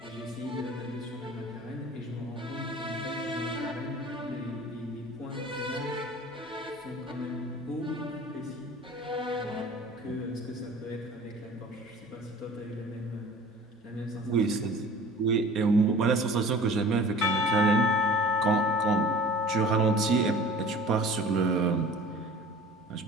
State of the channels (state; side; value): normal; both; correlation 0.44